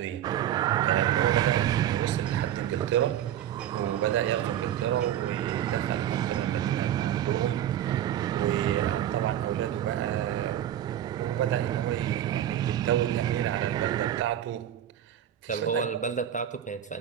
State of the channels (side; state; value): left; quieter; 11.1 dB